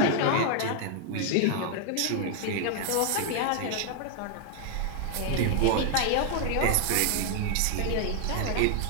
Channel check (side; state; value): both; different; correlation 0.00